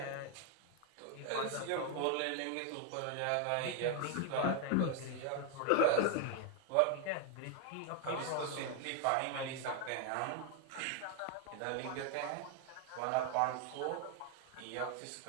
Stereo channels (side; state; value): both; different; correlation 0.01